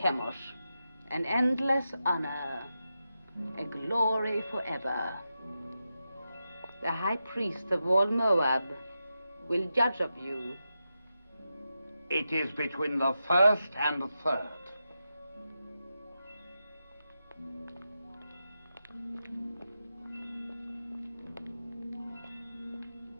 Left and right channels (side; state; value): both; inverted; correlation -0.89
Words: an endless honor, a glory forever. The high priest of all Moab will judge of you. It is between the first and the third.